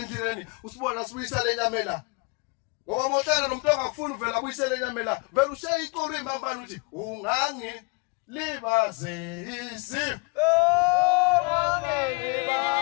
usibona sibuyisa lenyamela. Ngoba mohlala nomuntu ongakufuna uvela abuyisele lenyamela vele ushaya iqulu imambani uthi ungangilibazisi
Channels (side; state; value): right; quieter; 30.6 dB